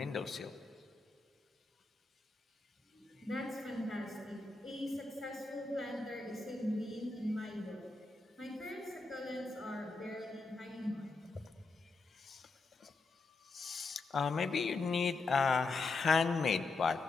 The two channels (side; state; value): right; quieter; 3.7 dB